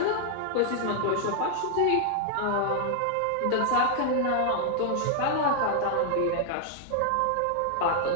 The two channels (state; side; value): different; both; correlation 0.00